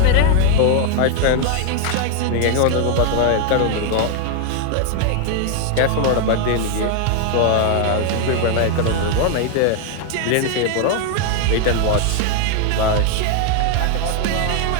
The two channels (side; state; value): both; different; correlation 0.00